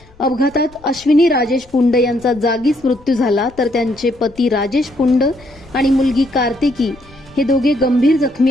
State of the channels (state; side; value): noise; left; rumble, 26 dB below the sound